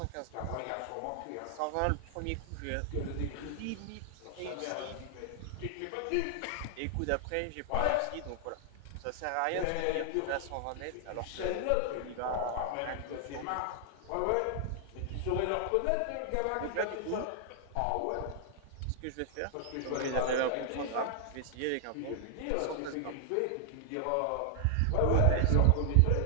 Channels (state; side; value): different; both; correlation 0.00